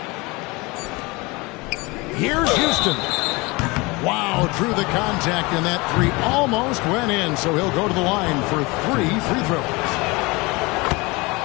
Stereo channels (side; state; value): right; quieter; 24.8 dB